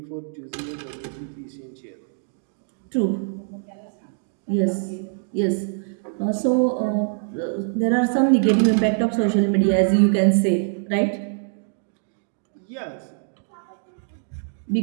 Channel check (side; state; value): left; silent; digital silence